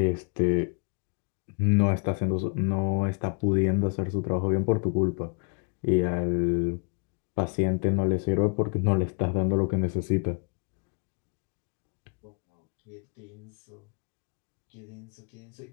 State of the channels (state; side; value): quieter; right; 36.1 dB